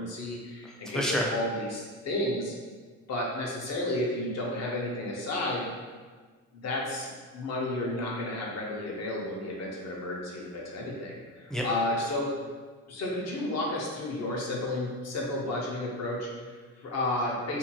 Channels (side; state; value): both; normal; correlation 0.17